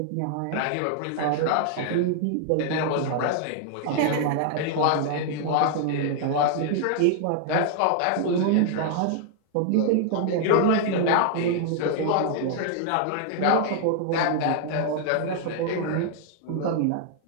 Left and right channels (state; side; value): different; both; correlation -0.01